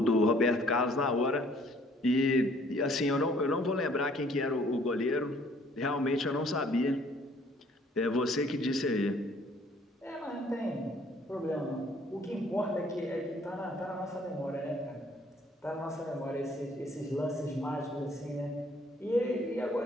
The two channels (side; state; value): both; normal; correlation 0.60